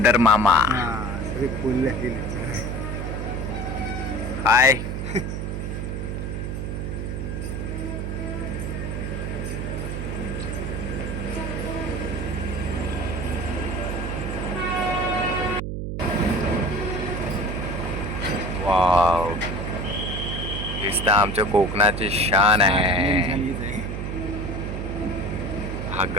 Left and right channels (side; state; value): right; noise; hum, 3 dB below the sound